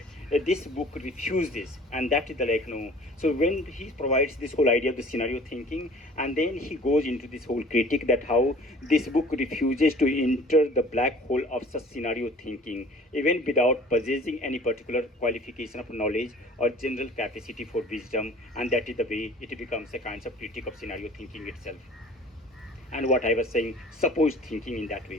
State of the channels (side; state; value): both; normal; correlation 0.48